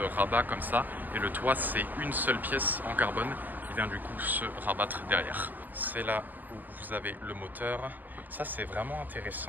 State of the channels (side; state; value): left; late; 0.085 ms